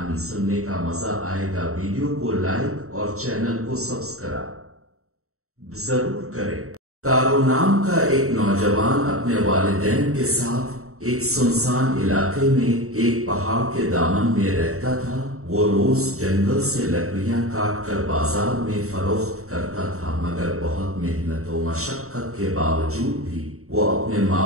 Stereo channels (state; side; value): late; left; 0.64 ms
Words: سننے کا مزہ آئے گا۔ ویڈیو کو لائک اور چینل کو سبسکرائب ضرور کریں۔ تارو نام کا ایک نوجوان اپنے والدین کے ساتھ ایک سنسان علاقے میں ایک پہاڑ کے دامن میں رہتا تھا۔ وہ روز جنگل سے لکڑیاں کاٹ کر بازار میں فروخت کرتا تھا، مگر بہت محنت و مشقت کے باوجود بھی وہ اپنے